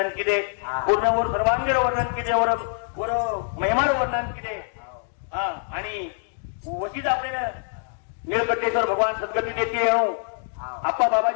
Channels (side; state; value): right; silent; digital silence